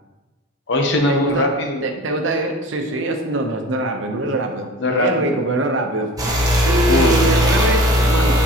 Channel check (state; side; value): normal; both; correlation 0.40